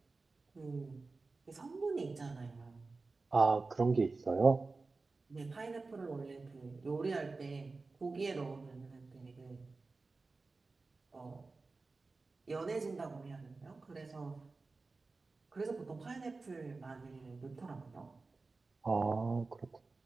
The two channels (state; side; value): quieter; left; 3.8 dB